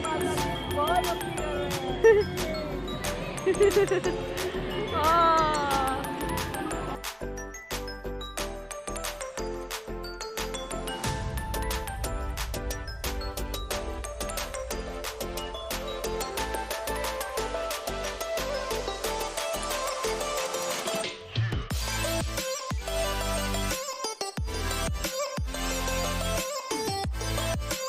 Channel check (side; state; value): both; identical; correlation 1.00